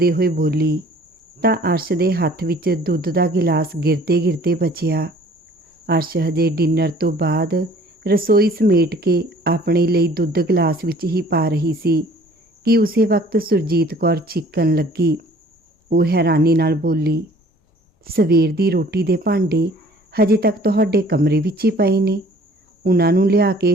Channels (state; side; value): normal; both; correlation 0.53